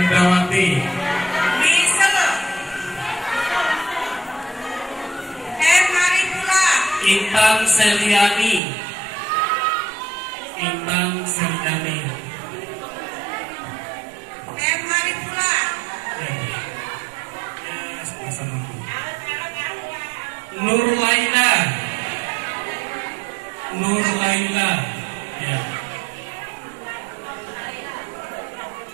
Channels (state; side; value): drops out; left; at 8.6 s